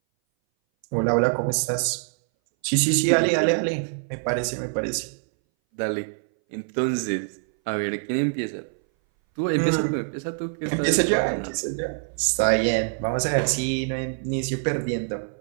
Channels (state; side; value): silent; left; 60 dB below the other